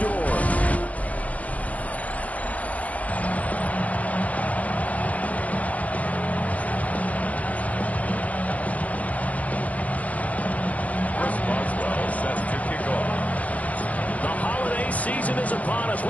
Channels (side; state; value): right; late; 0.070 ms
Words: Season is upon us.